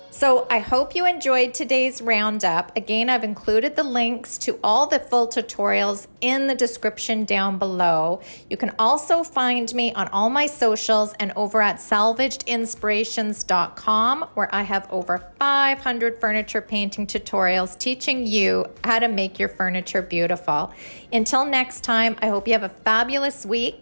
So I hope you enjoyed today's roundup. Again, I've included the links to all the full tutorials in the description down below. You can also find me on all my socials and over at salvagedinspirations.com, where I have over 500 furniture painting tutorials teaching you how to make your furniture beautiful. Until next time, I hope you have a fabulous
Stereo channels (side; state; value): both; inverted; correlation -1.00